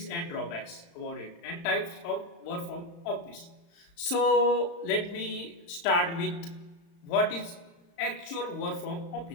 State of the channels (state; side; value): late; right; 35 ms